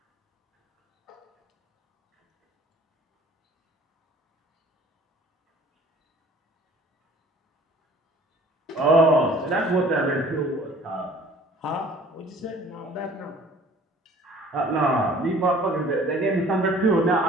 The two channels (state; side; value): normal; both; correlation 0.51